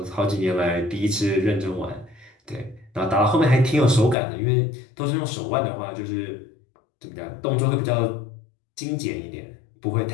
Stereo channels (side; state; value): right; drops out; at 4.2 s